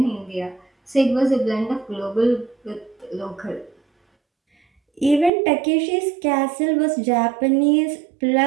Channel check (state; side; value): drops out; left; at 5.3 s